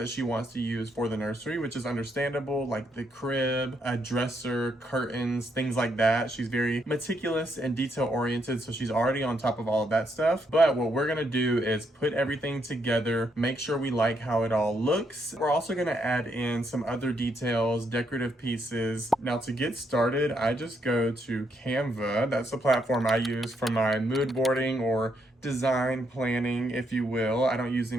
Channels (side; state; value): both; normal; correlation 0.76